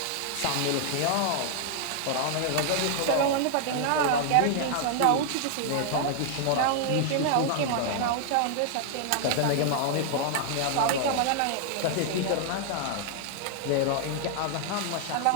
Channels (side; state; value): both; different; correlation 0.00